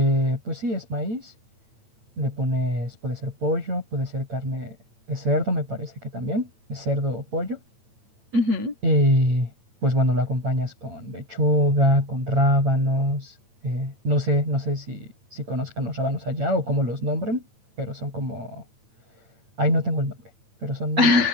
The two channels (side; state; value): left; late; 9.0 ms